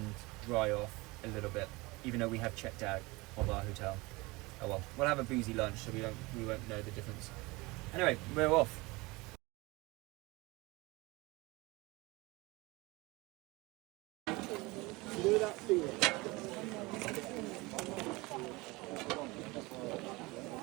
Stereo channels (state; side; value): quieter; left; 23.4 dB